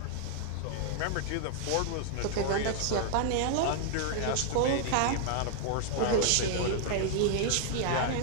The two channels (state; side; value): different; both; correlation 0.00